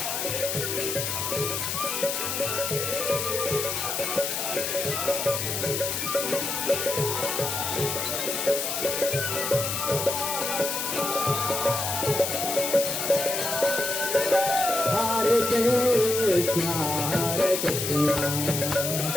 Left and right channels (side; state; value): left; noise; hiss, 2 dB below the sound